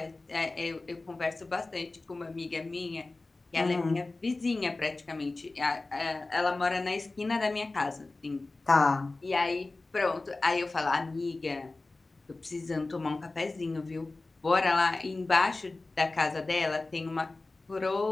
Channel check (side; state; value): right; quieter; 3.2 dB